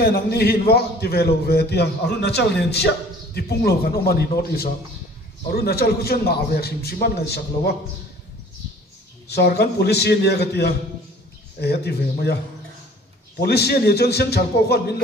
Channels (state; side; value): normal; both; correlation 0.51